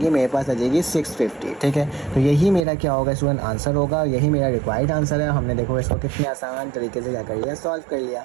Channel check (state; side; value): drops out; left; at 2.7 s